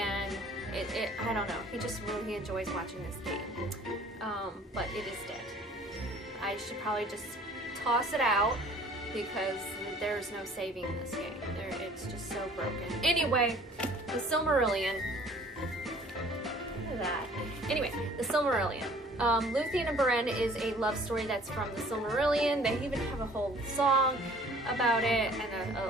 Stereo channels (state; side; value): normal; both; correlation 0.52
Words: I don't know, he just really enjoys watching this game. But it is dead. I should probably just toss it out because there's no saving this game. It's just so broken. Anyway, The Silmarillion. Look at that. Anyway, The Silmarillion. Luthien and Beren is a love story that's from the Silmarillion. They even have a whole song about it and